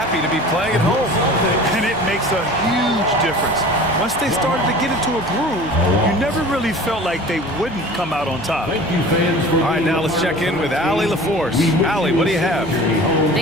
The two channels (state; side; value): noise; left; hum, 16 dB below the sound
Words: to be playing at home. And it makes a huge difference. Once they started to get into a groove, you never really felt like they wouldn't come out on top. All right, now let's check in with Allie LaForce. Allie, what do you have?